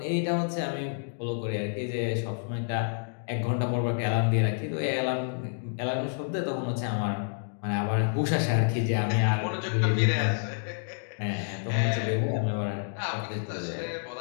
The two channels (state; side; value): silent; right; digital silence